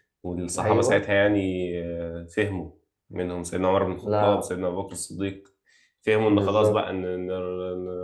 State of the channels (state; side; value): identical; both; correlation 1.00